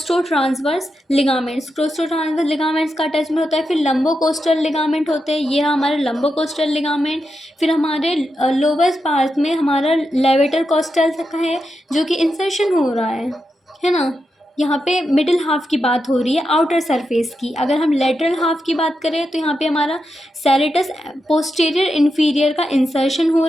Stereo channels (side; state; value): both; normal; correlation 0.87